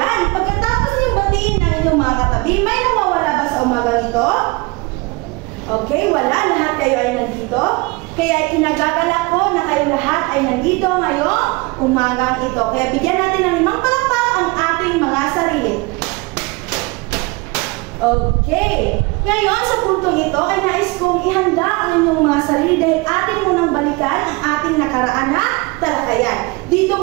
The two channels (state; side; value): quieter; left; 25.5 dB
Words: Pagkatapos yung batiin ng inyong mga katabi, may nawawala ba sa umagang ito? Okay, wala. Lahat kayo ay nandito. Kaya kinagagala ko na kayo lahat ay nandito ngayong umagang ito. Kaya bigyan natin ng 5 palakpak ang ating mga sarili. Okay. Ngayon, sa puntong ito ay nais kong ihanda ang inyong mga sarili dahil ating munang balikan ang ating nakaraan na talakayan. Dito